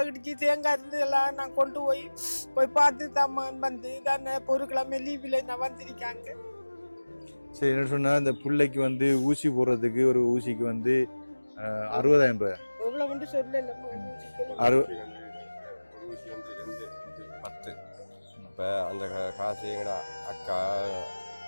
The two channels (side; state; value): both; inverted; correlation -1.00